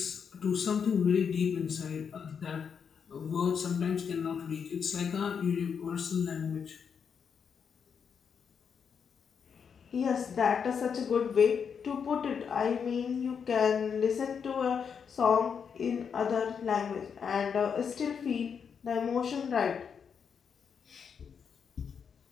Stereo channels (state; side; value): quieter; right; 6.8 dB